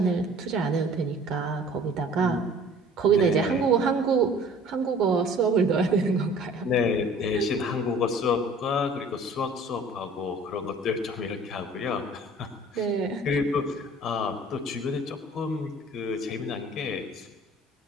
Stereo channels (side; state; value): both; normal; correlation 0.49